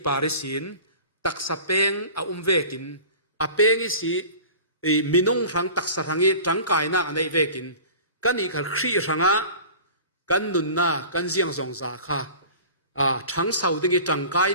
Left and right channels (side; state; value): both; inverted; correlation -0.41